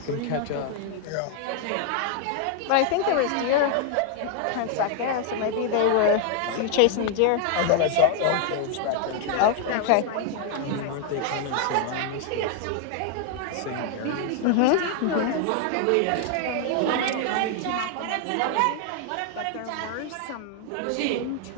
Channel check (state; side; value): different; both; correlation 0.00